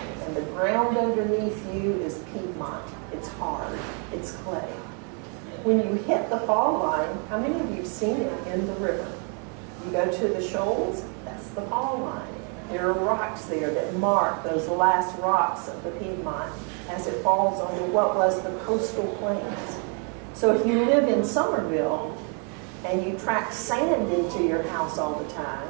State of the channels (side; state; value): left; quieter; 38.9 dB